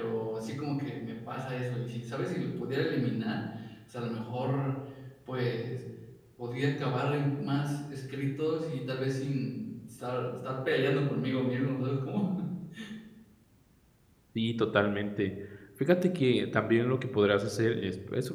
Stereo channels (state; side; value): identical; both; correlation 1.00